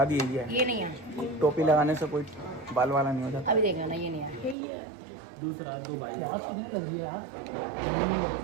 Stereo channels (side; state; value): left; drops out; at 4.5 s